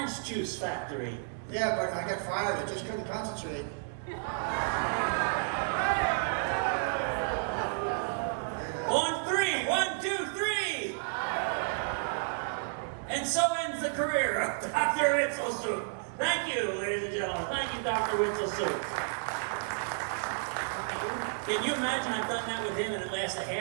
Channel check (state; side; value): silent; left; 57 dB below the other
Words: juice factory. Yeah, but I got fired. I just couldn't concentrate. On 3, 1, 2, 3. And so ends the career of Dr. Witzelsucht. Thank you, ladies and gentlemen. Thank you, Dr. Witzelsucht. Can you imagine I've done that with him and it lasts a